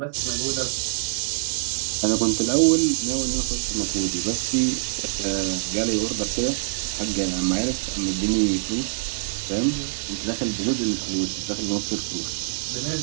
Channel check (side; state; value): left; silent; digital silence